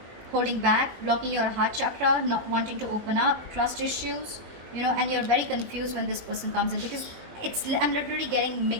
holding back, blocking your heart chakra, not wanting to open up, trust issues, you know, and you're very confused when this person comes in, because I'm literally getting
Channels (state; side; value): late; left; 20 ms